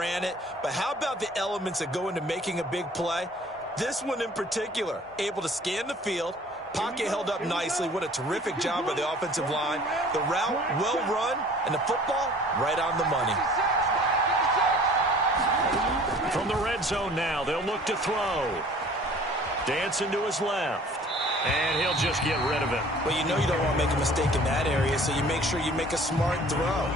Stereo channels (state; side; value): normal; both; correlation 0.50